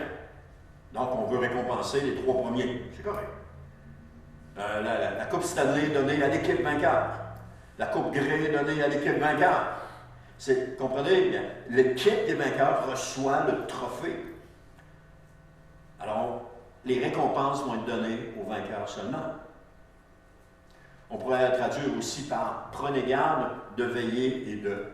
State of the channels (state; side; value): identical; both; correlation 1.00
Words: Donc, on veut récompenser les 3 premiers. C'est correct. La Coupe Stanley est donnée à l'équipe vainqueur. La Coupe Grey est donnée à l'équipe vainqueur. Comprenez? L'équipe des vainqueurs reçoit le trophée. Alors, les récompenses vont être données aux vainqueurs seulement. On pourrait la traduire aussi par « Prenez garde de veiller et de